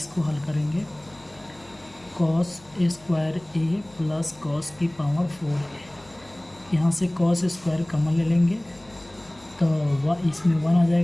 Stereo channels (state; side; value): noise; left; hum, 26 dB below the sound